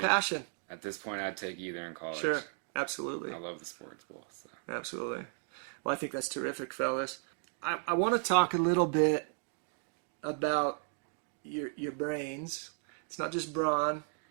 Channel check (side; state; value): left; silent; 55 dB below the other